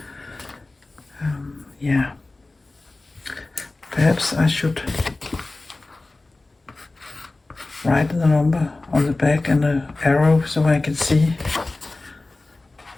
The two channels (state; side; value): quieter; right; 3.2 dB